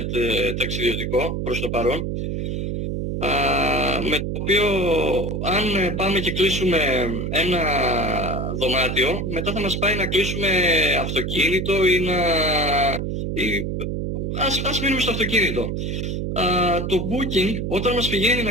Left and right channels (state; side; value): noise; right; hum, 2 dB below the sound